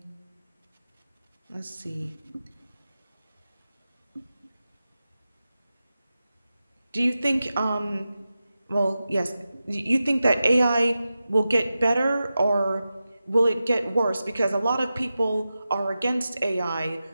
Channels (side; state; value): both; inverted; correlation -0.93